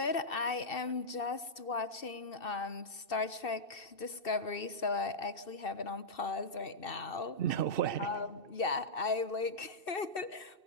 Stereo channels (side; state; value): right; late; 2.7 ms